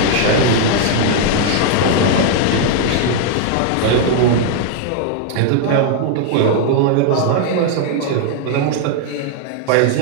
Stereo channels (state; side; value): different; both; correlation 0.00